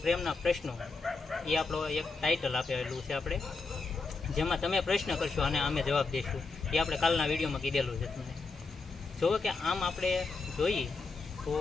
પ્રેમના પ્રશ્નો. એ આપણો એક ટાઇટલ આપેલું છે આપણે, જેમાં તમે પ્રશ્ન કરશો અને અમે જવાબ દઈશું. એ આપણે કાલના વિડીયોમાં કીધેલું છે તમને. જુઓ કે આમ આપણે જોઈએ તો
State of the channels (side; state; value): right; quieter; 4.1 dB